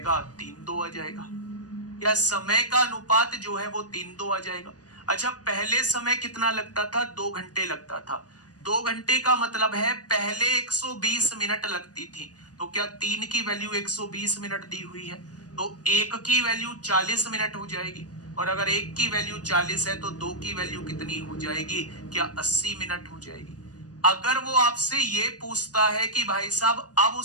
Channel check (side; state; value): right; late; 0.68 ms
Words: 3:2 आ जाएगा। या समय का अनुपात जो है वो 3:2 आ जाएगा। अच्छा पहले समय कितना लगता था? 2 घंटे लगता था। 2 घंटे का मतलब है पहले 120 मिनट लगती थी, तो क्या 3 की वैल्यू 120 मिनट दी हुई है तो 1 की वैल्यू 40 मिनट हो जाएगी, और अगर 1 की वैल्यू 40 है तो 2 की वैल्यू कितनी हो जाएगी? क्या 80 मिनट हो जाएगी। अगर वो आपसे ये पूछता है कि भाई साहब अब